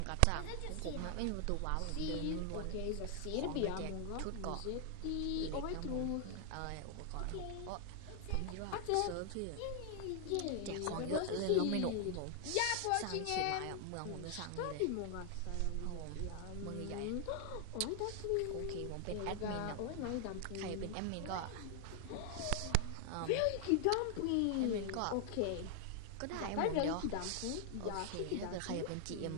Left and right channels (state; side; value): different; both; correlation 0.00